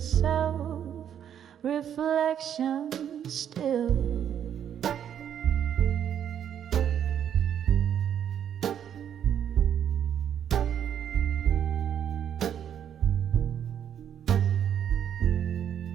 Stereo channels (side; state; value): left; quieter; 9.3 dB